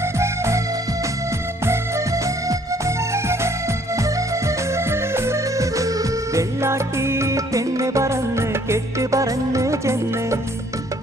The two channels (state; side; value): normal; both; correlation 0.61